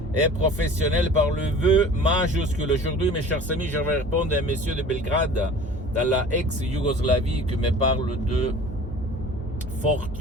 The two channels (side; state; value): both; normal; correlation 0.43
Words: et professionnelle par le vœu majuscule. Aujourd'hui, mes chers amis, je vais répondre à un monsieur de Belgrade, dans la ex-Yougoslavie, qui me parle de